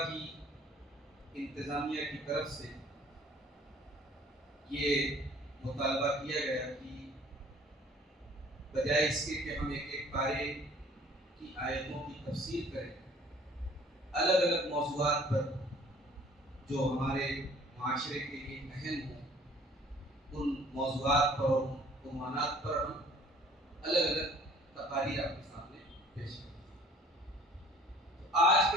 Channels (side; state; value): both; normal; correlation 0.54